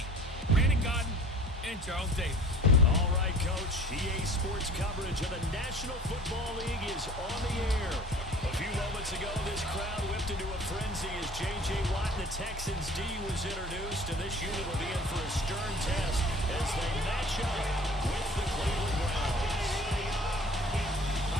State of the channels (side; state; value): both; normal; correlation 0.47